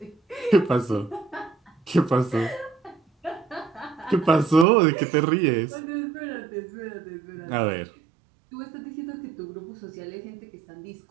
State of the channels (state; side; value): drops out; left; at 4.7 s